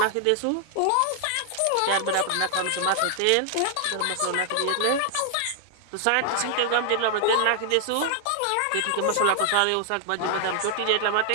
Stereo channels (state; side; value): different; both; correlation 0.00